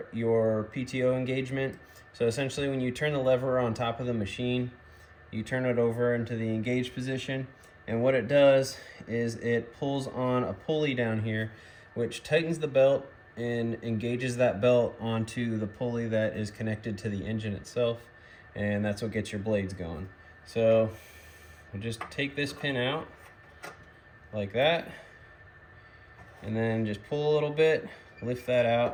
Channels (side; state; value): both; identical; correlation 1.00